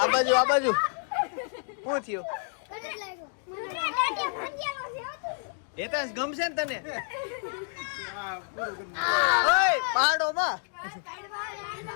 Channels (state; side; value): silent; right; 59 dB below the other